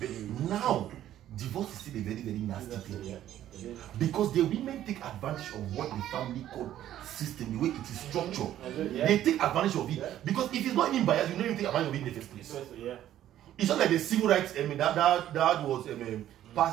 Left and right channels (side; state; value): left; quieter; 12.2 dB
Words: now, divorce is still a very, very nasty thing. Because the women take advantage of what the family court system, the way it is structured. They take advantage of it. Because if it's not even biased, you don't even take advantage of it in the first place. It's not like the civil rights, I mean, that was